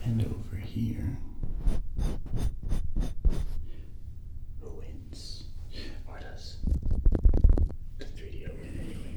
and over here, who wins? Or does the 3DO win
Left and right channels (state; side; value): identical; both; correlation 1.00